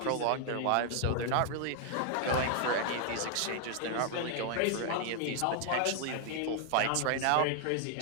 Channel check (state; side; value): different; both; correlation 0.00